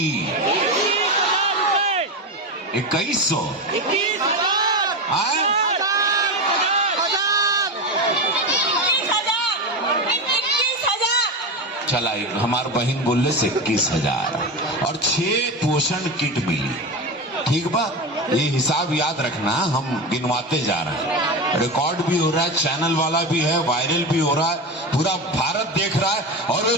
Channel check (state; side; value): normal; both; correlation 0.19